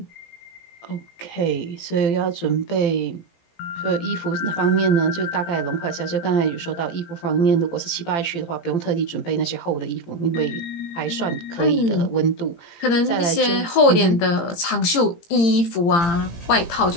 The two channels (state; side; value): late; right; 17 ms